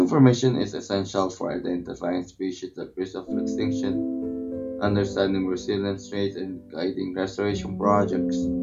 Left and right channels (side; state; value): both; identical; correlation 1.00